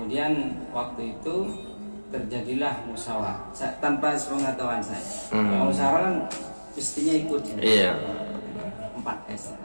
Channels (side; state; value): both; inverted; correlation -1.00